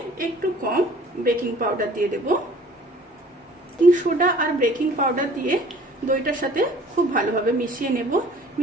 একটু কম বেকিং পাউডার দিয়ে দেব। বেকিং সোডা আর বেকিং পাউডার দিয়ে দইটার সাথে খুব ভালোভাবে মিশিয়ে নেব।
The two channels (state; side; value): normal; both; correlation 0.51